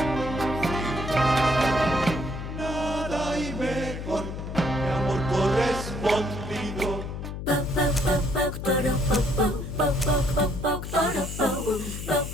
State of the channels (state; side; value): noise; left; hum, 7 dB below the sound